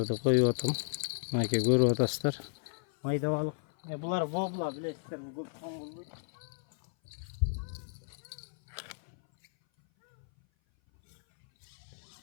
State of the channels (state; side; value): silent; right; 55 dB below the other